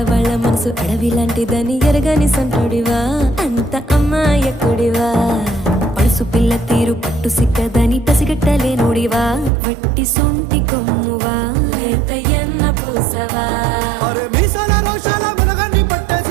మనసు అడవి లాంటిదని ఎరగని సంటుడివా, అంత అమ్మాయకుడివా. పడుసు పిల్ల తీరు పట్టు సిక్కదని పసిగట్టలేనుడివా, వట్టి సొంటి కొమ్మువా, లేతయ్యన్న పూసవా. అరే మీసాల రోషాల మెలగాన్ని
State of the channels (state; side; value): drops out; left; at 9.5 s